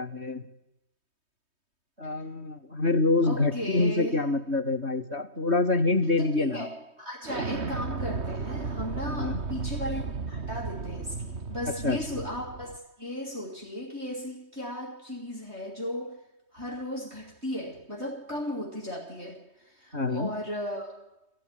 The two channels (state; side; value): late; left; 3.2 ms